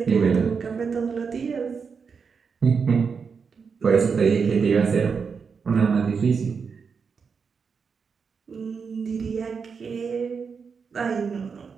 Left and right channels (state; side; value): quieter; left; 5.7 dB